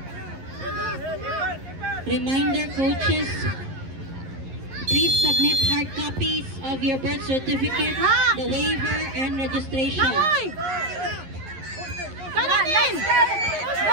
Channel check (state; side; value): late; left; 11 ms